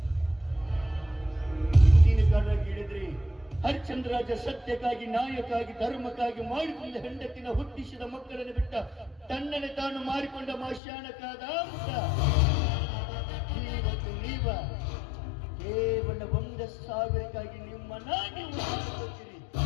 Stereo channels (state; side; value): drops out; right; at 10.8 s